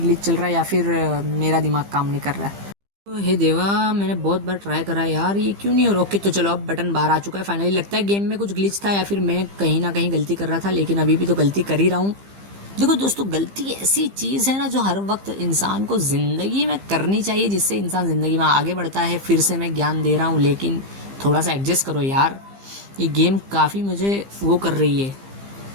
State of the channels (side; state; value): left; late; 15 ms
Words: ग्लिच चल रहा है या फिर मेरा दिमाग काम नहीं कर रहा है। तो हे देवा, मैंने बहुत बार ट्राई करा यार, ये क्यों नहीं हो रहा। ओके, तो चलो अब बटन बाहर आ चुका है फाइनली। लगता है गेम में कुछ ग्लिच था या फिर मैं कहीं ना कहीं गलती कर रहा था, लेकिन अभी भी तो गलती कर ही रहा हूँ। देखो दोस्तों, गलती ऐसी चीज़ है ना जो हर वक्त इंसान को ज़िंदगी में करनी चाहिए, जिससे इंसान ज़िंदगी में आगे बढ़ता है। फिर से मैं ज्ञान दे रहा हूँ, लेकिन थोड़ा सा एडजस्ट करो यार, ये गेम काफ़ी मुझे वो कर रही है,